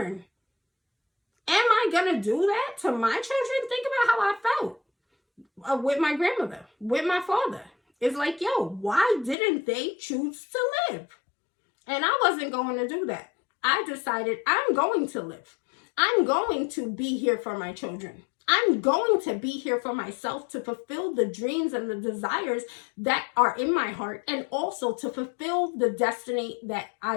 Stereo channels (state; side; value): drops out; right; at 9.3 s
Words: Am I going to do that to my children? Think about how I felt with my grandmother, with my father. It's like, yo, why didn't they choose to live? And I wasn't going to do that. I decided I'm going to live. I'm going to be here for my children. I'm going to be here for myself to fulfill the dreams and the desires that are in my heart, and also to fulfill the destiny that